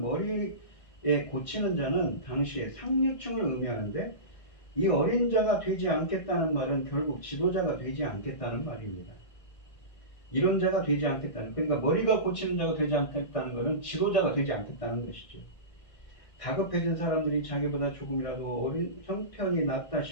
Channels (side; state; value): right; late; 1.6 ms